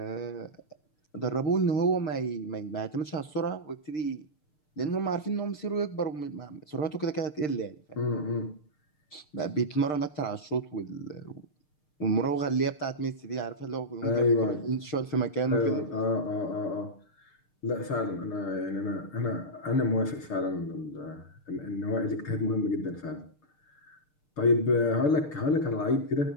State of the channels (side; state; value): right; late; 6.6 ms